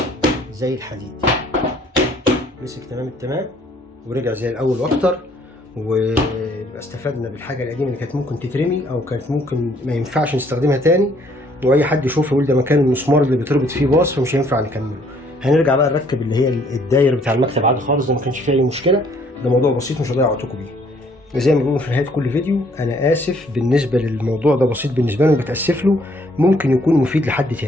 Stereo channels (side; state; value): both; normal; correlation 0.63